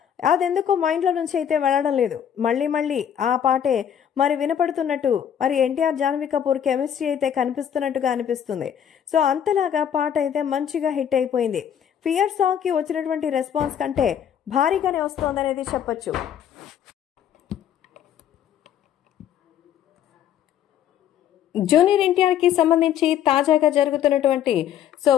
అదెందుకో మైండ్ లో నుంచి అయితే వెళ్ళడం లేదు. మళ్ళీ ఆ పాటే మరి వినపడుతున్నట్టు మరి ఎన్టీఆర్ జాన్వీ కపూర్ కెమిస్ట్రీ అయితే కనిపిస్తున్నట్టుగా అనిపిస్తుంది. సో అంతలాగా పాట అయితే మంచిగా హిట్ అయిపోయింది. ఫియర్ సాంగ్ కి వచ్చినటువంటి రెస్పాన్స్ కంటే భారీగానే వస్తోందనేది చెప్పొచ్చు. జూనియర్ ఎన్టీఆర్ కి సంబంధించి తాజాగా జరుగుతున్నటువంటి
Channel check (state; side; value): quieter; right; 9.4 dB